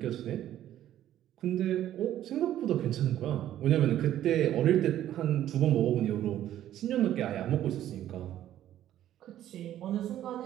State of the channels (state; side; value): quieter; left; 12.2 dB